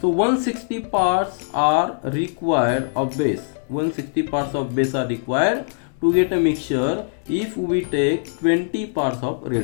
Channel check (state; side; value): silent; right; digital silence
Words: 160 parts are required of base. 160 parts of base are required to get a mixture if we take 20 parts of